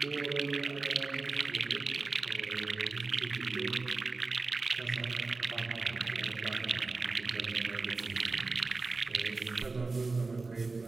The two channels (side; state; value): left; quieter; 3.8 dB